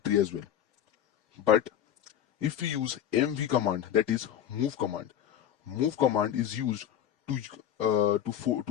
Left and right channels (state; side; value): quieter; right; 10.1 dB